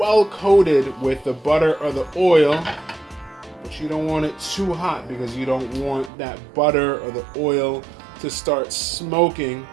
coated with the butter or the oil, but you don't want it too hot because you don't want that butter or the oil to start smoking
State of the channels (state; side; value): drops out; left; at 6.1 s